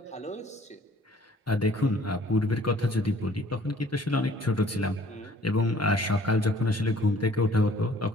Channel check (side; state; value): both; normal; correlation 0.56